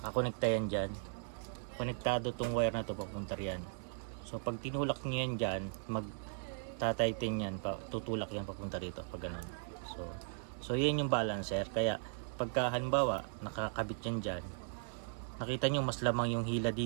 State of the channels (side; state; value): left; silent; 53 dB below the other